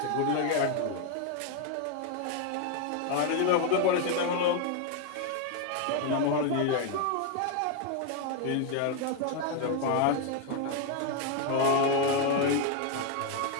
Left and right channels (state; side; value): different; both; correlation 0.01